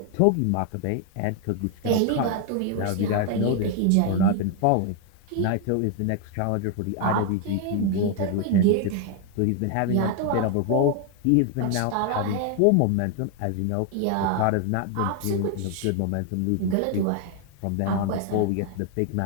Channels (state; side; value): different; both; correlation 0.00